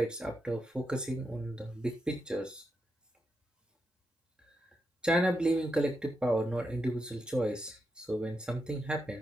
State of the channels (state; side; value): normal; both; correlation 0.85